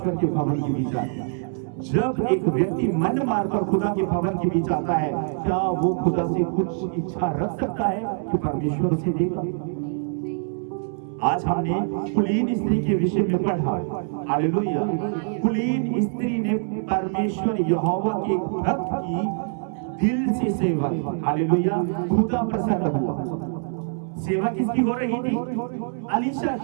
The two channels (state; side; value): silent; left; 62 dB below the other